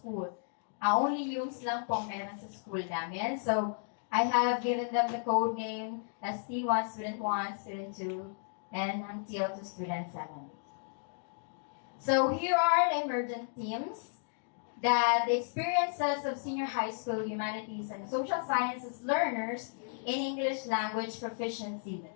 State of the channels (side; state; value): right; silent; digital silence